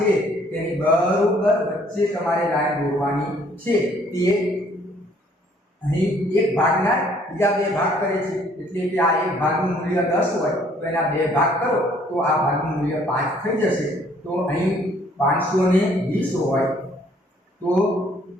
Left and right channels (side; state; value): both; normal; correlation 0.61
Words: તેની બરોબર વચ્ચે તમારે લાઈન દોરવાની છે. તે અહીં એક ભાગના બીજા 2 ભાગ કરે છે, એટલે કે આ એક ભાગનું મૂલ્ય 10 હોય તો એના 2 ભાગ કરો તો આ ભાગનું મૂલ્ય 5 થઈ જશે. તો અહીં 520 હોય તો